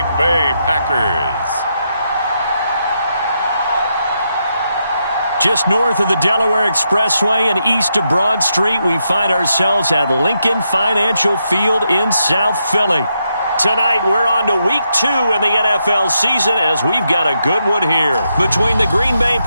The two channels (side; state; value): both; inverted; correlation -0.82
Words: Bay Packers. Just north of the Delaware Expressway and east of Broad Street, we find ourselves at Lincoln Financial Field in South Philly. Tonight, we're on to Week 2 in the NFL season as we've got a good one here between the Green Bay